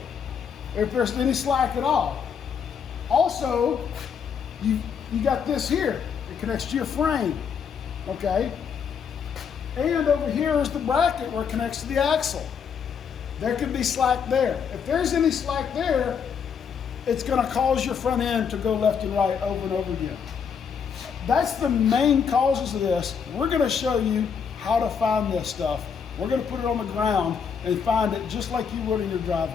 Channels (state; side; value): quieter; right; 6.8 dB